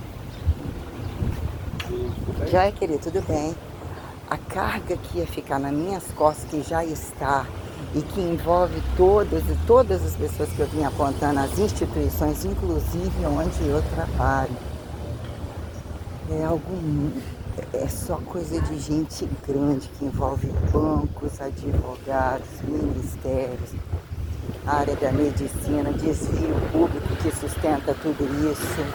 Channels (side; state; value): both; identical; correlation 1.00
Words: Joia, querido, tudo bem? A carga que ia ficar nas minhas costas, que já está, e que envolve todas as pessoas que eu vim apontando, as instituições, inclusive onde eu trabalho. É algo, é só coisa de gente grande, que envolve bancos, advogados, ministérios, área da medicina, desvio público que sustenta tudo isso.